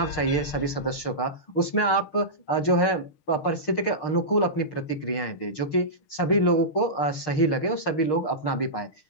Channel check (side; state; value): right; late; 6.6 ms